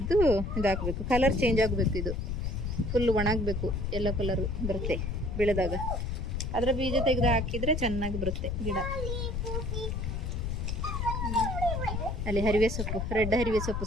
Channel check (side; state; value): left; noise; rumble, 2 dB below the sound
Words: ಇದಾಕಬೇಕು. ಕಲರ್ ಚೇಂಜ್ ಆಗಬೇಕು. ಇದು ಫುಲ್ ಒಣಗಬೇಕು, ಎಲ್ಲೋ ಕಲರ್ ಬರುತ್ತೆ ಬೆಳೆದಾಗ. ಅದರ ಬೀಜ ತೆಗೆದು ಹಾಕಿದರೆ ಚೆನ್ನಾಗಿ ಬರುತ್ತೆ ಗಿಡ. ಅಲ್ಲಿ ಹರಿವೆ ಸೊಪ್ಪು, ರೆಡ್ ಹರಿವೆ ಸೊಪ್ಪು